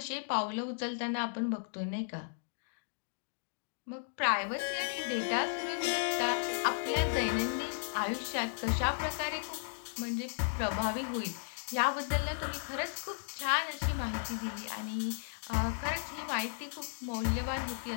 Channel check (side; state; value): right; silent; digital silence